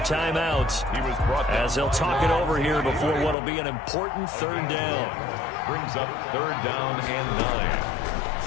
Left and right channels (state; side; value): drops out; right; at 3.4 s